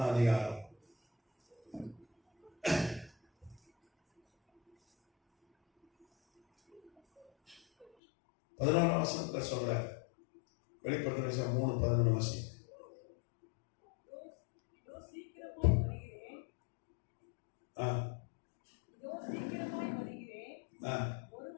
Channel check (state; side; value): drops out; right; at 7.9 s